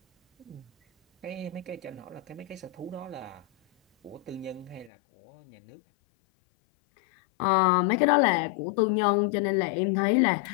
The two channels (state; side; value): drops out; right; at 4.9 s